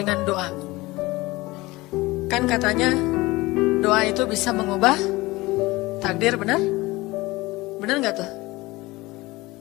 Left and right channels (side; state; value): right; quieter; 20.8 dB